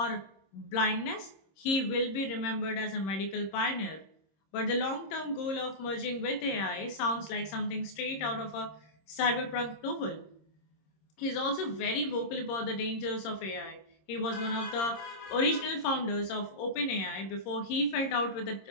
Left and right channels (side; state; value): right; late; 26 ms